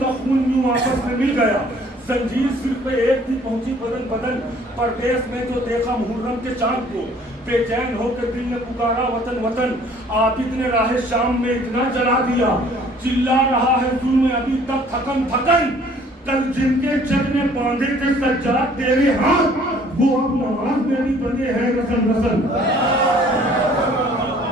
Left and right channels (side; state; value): both; normal; correlation 0.56